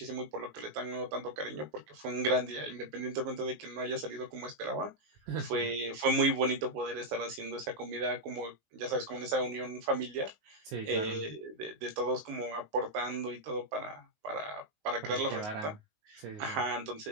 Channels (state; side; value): late; left; 19 ms